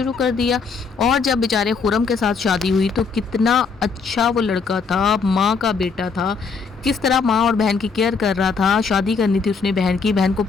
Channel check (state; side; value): quieter; right; 5.0 dB